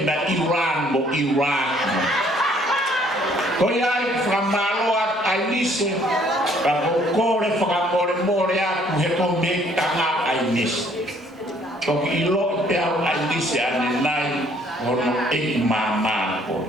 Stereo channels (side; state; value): both; normal; correlation 0.62